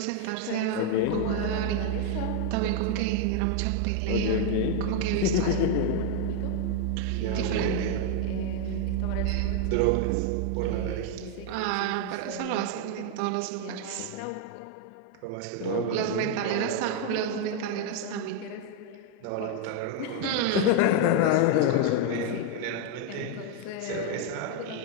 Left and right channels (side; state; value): both; different; correlation 0.00